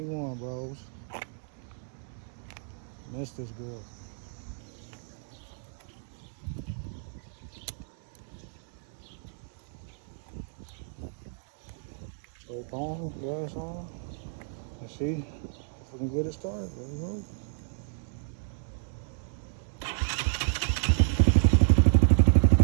bros. Missed this girl. Choke on, gas on. Let's see if we can get it started. There we go.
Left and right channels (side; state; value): left; silent; 57 dB below the other